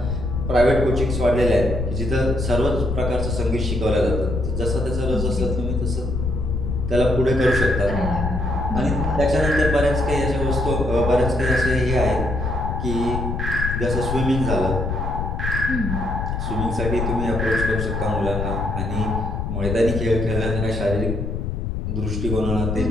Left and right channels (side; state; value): left; noise; rumble, 2 dB below the sound